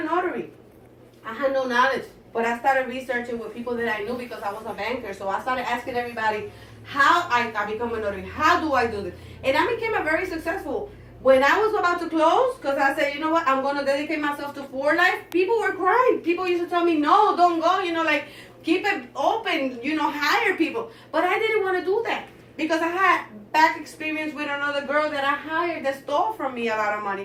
notary, I had no knowledge, but I started researching with people that I knew because I was a banker. So I started asking everybody how I become a notary. How do I do this? And I became a very successful. When I was about to close, because I said, you know what, I'm going to dedicate myself to for life, people were crying. People used to tell me, no, don't go, keep it open, hire people. But I didn't want to do that because I had back experience with another girl that I hired that stole from me a lot of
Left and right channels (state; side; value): identical; both; correlation 1.00